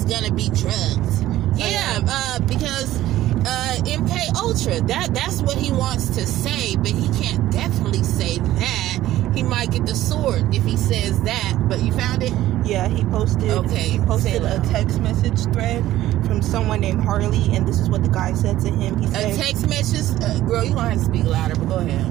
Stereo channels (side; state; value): left; quieter; 14.5 dB